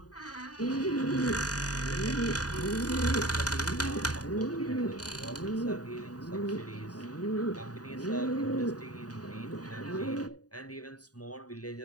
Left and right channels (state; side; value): late; right; 0.68 ms